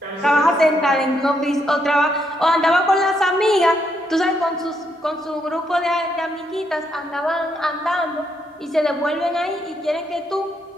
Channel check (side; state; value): both; normal; correlation 0.77